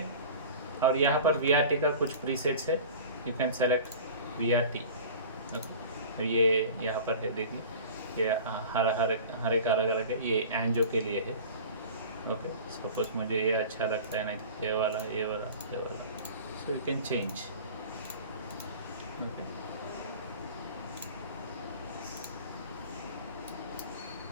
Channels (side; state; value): both; inverted; correlation -0.39